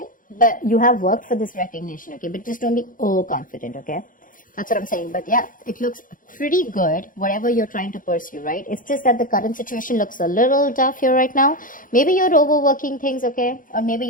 But you have worked for this recognition, okay? But just don't be overconfident, okay? That's what I'm saying. But yeah, it looks pretty good, whatever you're trying to pursue, right? It's just that the current situation looks a little tough here right now. Maybe you're overworking things, okay? Or maybe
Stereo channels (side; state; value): right; late; 0.39 ms